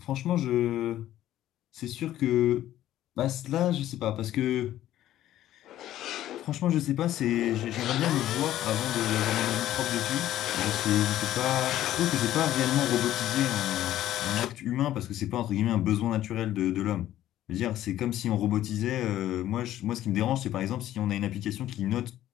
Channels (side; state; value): right; quieter; 13.1 dB